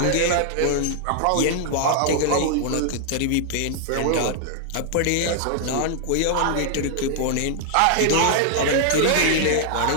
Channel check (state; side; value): different; both; correlation -0.01